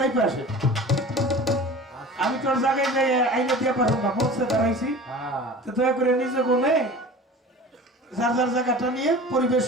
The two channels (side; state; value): both; normal; correlation 0.38